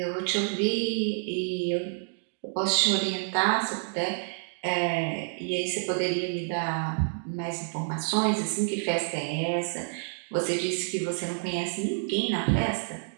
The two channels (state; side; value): silent; left; digital silence